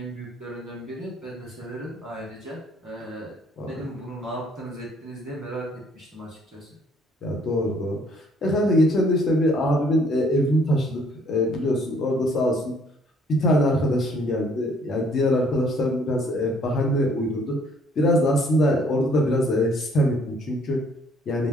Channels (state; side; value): normal; both; correlation 0.63